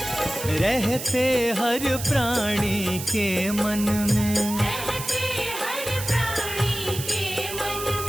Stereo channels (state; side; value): noise; right; hiss, 8 dB below the sound